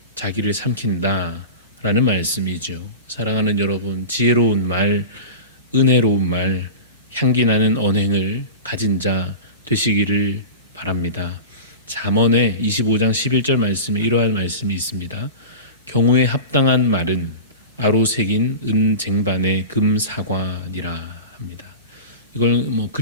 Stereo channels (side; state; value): both; inverted; correlation -0.30